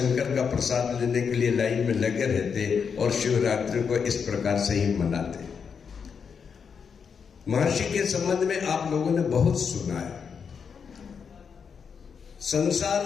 का प्रसाद लेने के लिए लाइन में लगे रहते और शिवरात्रि को इस प्रकार से ही मनाते। महर्षि के संबंध में आप लोगों ने बहुत सुना है। संसार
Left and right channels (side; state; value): right; quieter; 6.4 dB